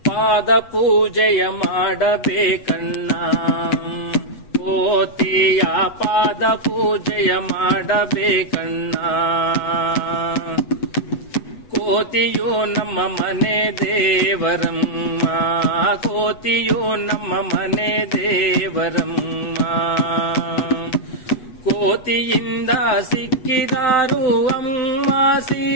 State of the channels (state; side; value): late; right; 8.2 ms